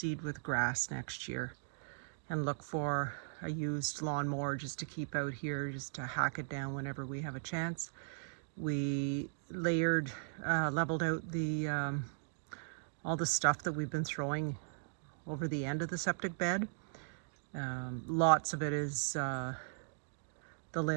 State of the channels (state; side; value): silent; left; digital silence